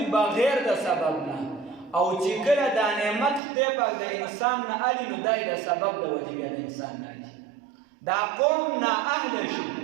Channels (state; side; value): drops out; left; at 3.4 s